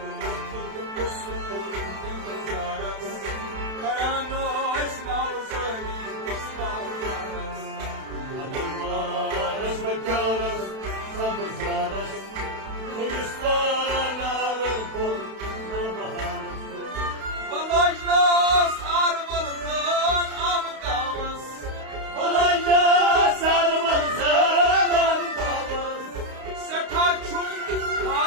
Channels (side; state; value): left; late; 32 ms